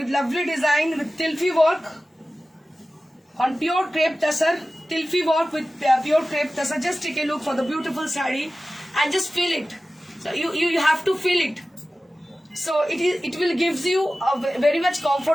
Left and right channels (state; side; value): normal; both; correlation 0.96